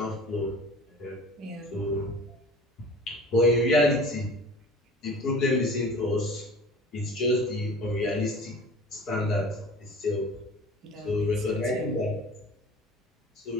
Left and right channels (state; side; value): normal; both; correlation 0.41